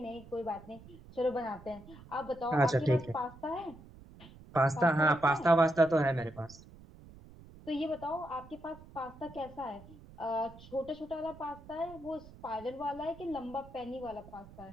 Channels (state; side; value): noise; right; rumble, 19 dB below the sound